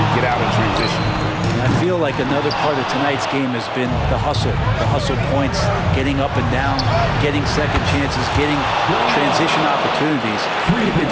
get out of transition. I feel feel like another part of tonight's game has been the hustle points, getting up and down, getting second chances, getting transition opportunities. They've been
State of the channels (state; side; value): identical; both; correlation 1.00